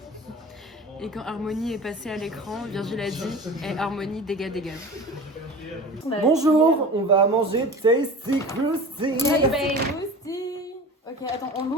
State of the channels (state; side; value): normal; both; correlation 0.36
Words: Et quand Harmonie est passée à l'écran, Virgile a dit hey, Harmonie, dégage. Bonjour, on va manger Tasty Krusty. Ok, attends, on